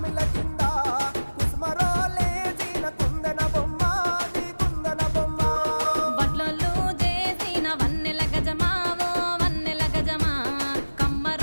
కింద కుసుమరో లేచిన కుందన బొమ్మ అది కుందన బొమ్మ వడ్లలు చేసిన వన్నెల గజమావో వన్నెల గజమా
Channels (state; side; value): inverted; both; correlation -1.00